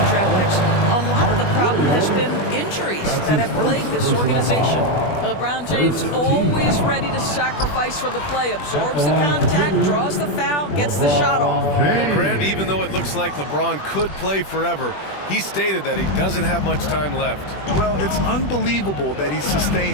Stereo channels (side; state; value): right; late; 21 ms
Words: draft picks. A lot of the problem has been injuries that have plagued this organization. LeBron James always ready to sacrifice for the play, absorbs the contact, draws the foul, gets the shot off. Well, Grant, even though it looks like LeBron could play forever, he stated that he doesn't have much time left. Well, it's unbelievable that he's